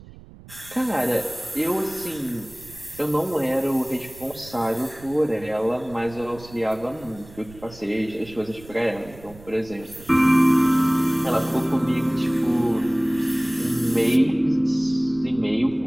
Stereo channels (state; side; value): noise; right; rumble, 20 dB below the sound